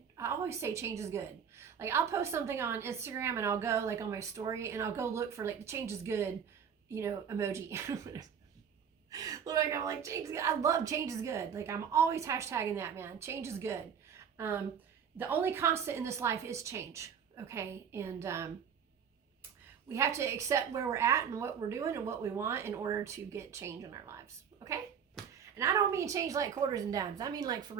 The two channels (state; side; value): quieter; left; 7.5 dB